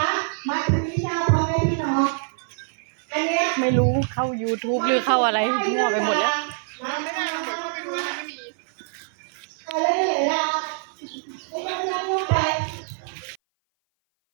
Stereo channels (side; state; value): left; silent; 58 dB below the other